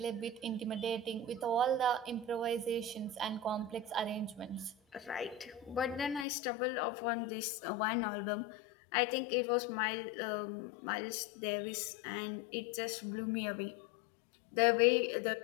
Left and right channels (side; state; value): right; drops out; at 6.2 s